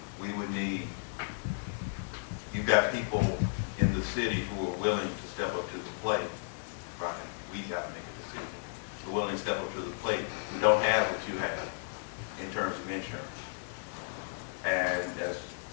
we would need, you've got people in the city who are willing to step up to the plate, right? We have to make a decision. We're willing to step up to the plate. We don't have what you have in terms of insurance. And as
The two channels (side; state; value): right; silent; 55 dB below the other